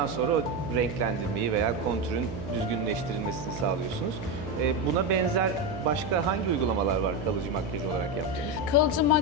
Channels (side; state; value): right; noise; hum, 8 dB below the sound